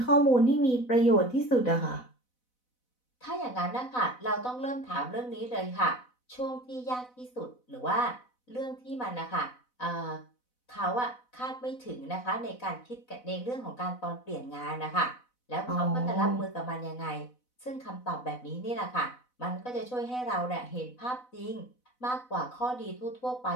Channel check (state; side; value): late; right; 4.0 ms